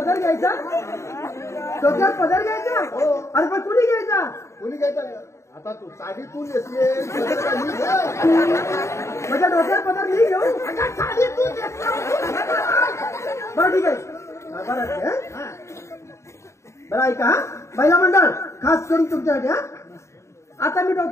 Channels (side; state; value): right; late; 0.14 ms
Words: घ्यायचा डोक्यावर पदर घ्यायचा अरे पण कुणी घ्यायचा कोणी घ्यायचं? आता तू साडी तू नेसले. माझ्या डोक्यावर पदर मी घेऊ साडी तू नेसली. बरं ठीक आहे बरं आहे, हं? बरं ऐका हा महिला मंडळ खास करून तुमच्यासाठी हा आता मी